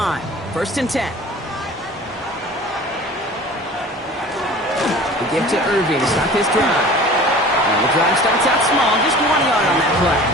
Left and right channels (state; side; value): normal; both; correlation 0.42